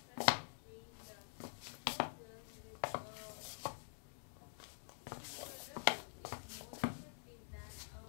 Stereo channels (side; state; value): right; silent; digital silence